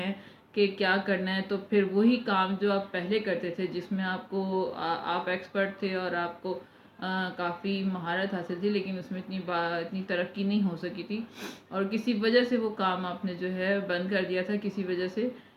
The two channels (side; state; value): both; identical; correlation 1.00